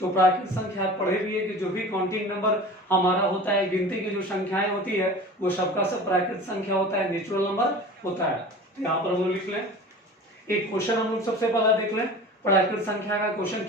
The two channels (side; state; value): both; normal; correlation 0.38